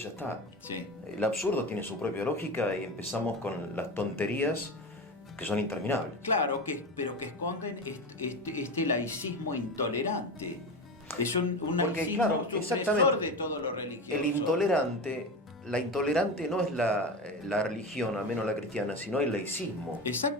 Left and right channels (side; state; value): both; normal; correlation 0.24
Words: ya está. Sí. El absurdo tiene su propia lógica y empezamos con las tonterías que son interminables. Claro, pero que esconden este laicismo intolerante. Es un Porque, laicismo claro, supresor exactamente, de todo lo religioso. La intolerante no es la religión, al menos la cristiana, sino el laicismo.